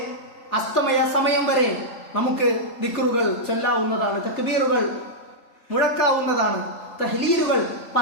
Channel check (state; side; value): late; right; 3.3 ms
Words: അസ്തമയ സമയം വരെ നമുക്ക് ദിക്റുകൾ ചൊല്ലാവുന്നതാണ്, തക്ബീറുകൾ മുഴക്കാവുന്നതാണ്, തഹ്ലീലുകൾ